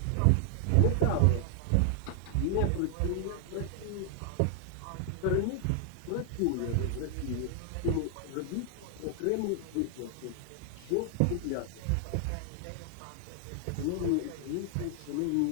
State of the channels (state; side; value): different; both; correlation 0.00